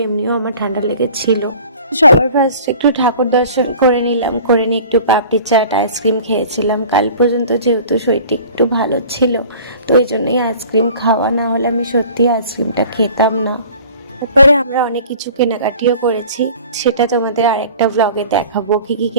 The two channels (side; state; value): both; inverted; correlation -0.45